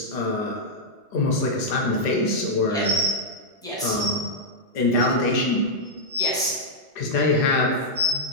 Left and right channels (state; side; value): normal; both; correlation -0.06